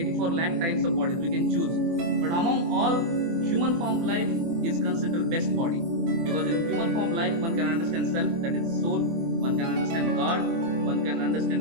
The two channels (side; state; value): left; late; 24 ms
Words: lakh types of bodies we can choose. But among all, human form life is considered best body, because in human form life one can understand self, that is soul, one can understand God, one can